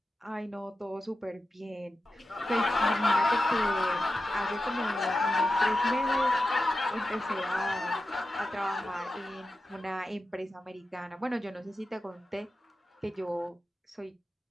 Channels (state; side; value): normal; both; correlation 0.91